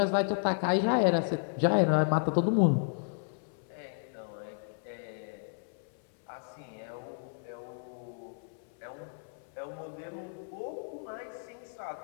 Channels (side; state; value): right; silent; 56 dB below the other